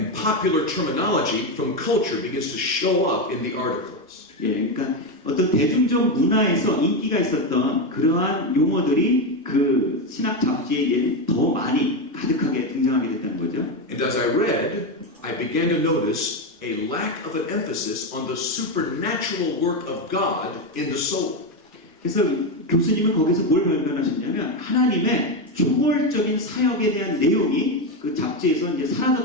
popular terminology from culture begins to show up in the articles. 그러니까 어떤 대중적 문화에서 인기가 있었던 그러한 용어들이 그 신학 잡지에 더 많이 가득하게 등장하게 됐다는 거죠. And as I read, I began to notice a lack of an emphasis on the supernatural work of God in the soul. 그래서 교수님은 거기서 뭘 발견하셨냐면 하나님의 초월적인 사역에 대한 내용이 그 잡지에서 이제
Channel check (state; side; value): normal; both; correlation 0.11